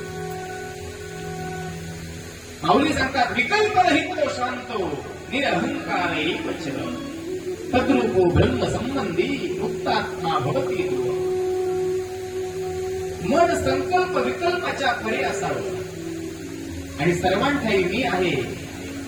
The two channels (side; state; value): both; identical; correlation 1.00